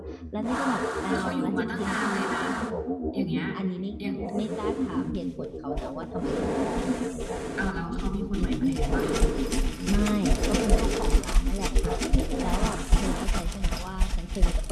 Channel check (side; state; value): both; identical; correlation 1.00